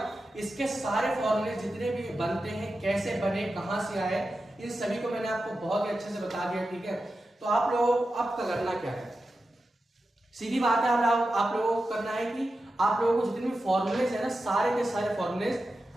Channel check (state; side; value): normal; both; correlation 0.91